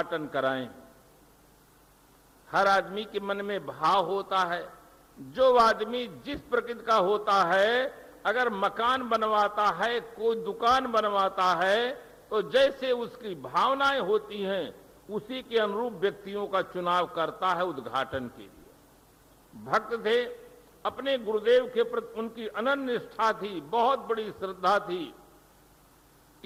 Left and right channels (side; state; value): both; identical; correlation 1.00